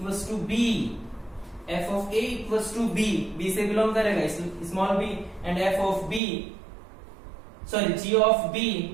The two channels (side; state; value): left; drops out; at 6.2 s